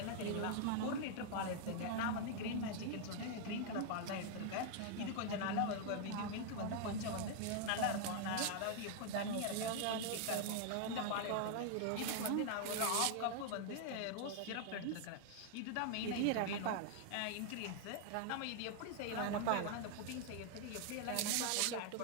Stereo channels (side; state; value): both; different; correlation 0.00